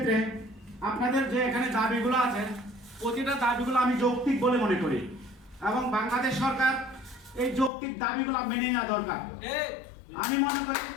আপনাদের যে এখানে দাবিগুলো আছে, প্রতিটা দাবিগুলো আমি যৌক্তিক বলে মনে করি, এবং বাংলাদেশ সরকার এই যৌক্তিক দাবিগুলো মেনে নেওয়া দরকার। আমি মনে করি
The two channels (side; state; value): right; drops out; at 7.7 s